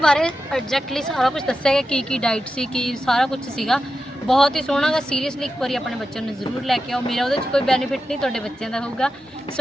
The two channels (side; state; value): both; normal; correlation 0.91